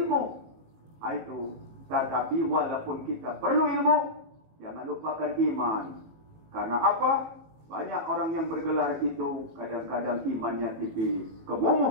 Itu. Tetapi walaupun kita perlu ilmu, jangan lupakan iman. Karena apa? Banyak orang yang bergelar itu kadang-kadang imannya tipis.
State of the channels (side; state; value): left; late; 19 ms